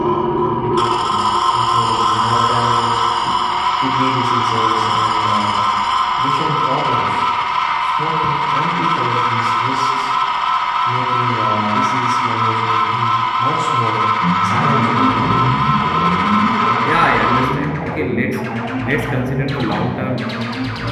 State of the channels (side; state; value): both; identical; correlation 1.00